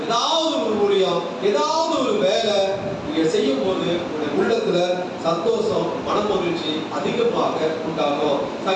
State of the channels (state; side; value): identical; both; correlation 1.00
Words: ஏதாவது ஒரு ஊழியம், ஏதாவது ஒரு வேலை நீங்க செய்யும் போது உள்ளத்துல சந்தோஷம், மனமகிழ்ச்சி அதிகமாக உண்டாகும்.